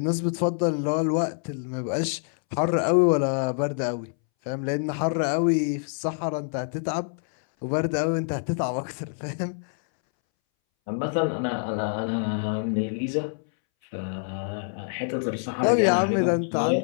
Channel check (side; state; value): right; silent; 61 dB below the other